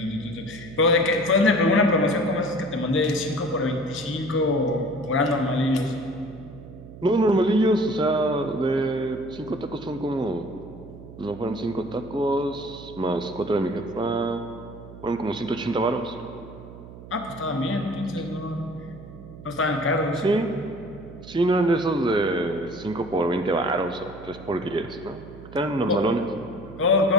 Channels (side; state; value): right; noise; hum, 16 dB below the sound